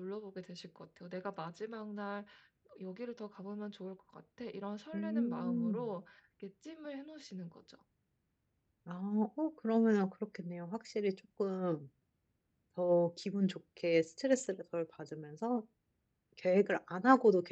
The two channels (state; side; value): identical; both; correlation 1.00